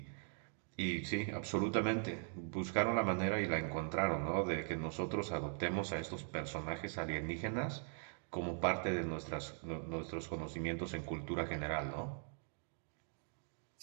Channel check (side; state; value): left; silent; 50 dB below the other